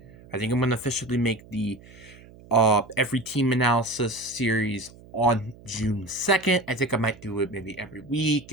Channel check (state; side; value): noise; right; hum, 22 dB below the sound